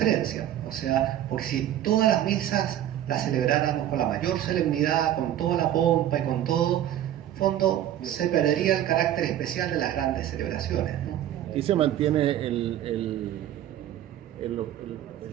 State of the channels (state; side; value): quieter; left; 11.8 dB